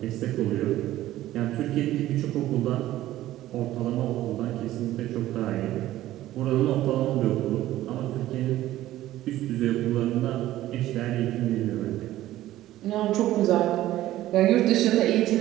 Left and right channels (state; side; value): quieter; left; 14.7 dB